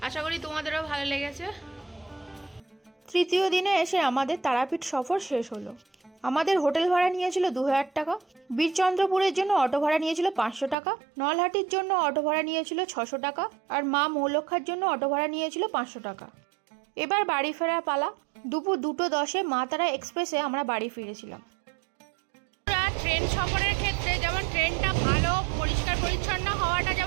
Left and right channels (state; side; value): drops out; left; at 10.8 s